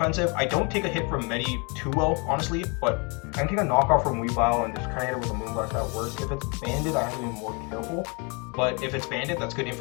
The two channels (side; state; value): right; quieter; 32.3 dB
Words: I don't take a hit from Medi too well, honestly, but I can take a knockoff from Weavile and just kind of hit it with a Moonblast that works. If it's banded, I have to be more careful. But if it's banded, that's good